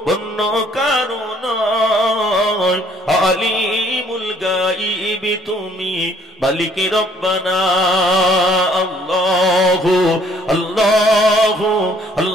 অন্য কারণ আলিমুল গাইব তুমি মালিক রব্বানা আল্লাহু আল্লাহু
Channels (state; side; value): normal; both; correlation 0.61